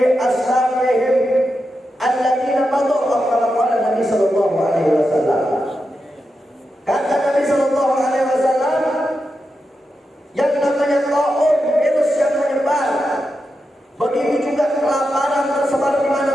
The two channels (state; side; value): normal; both; correlation 0.88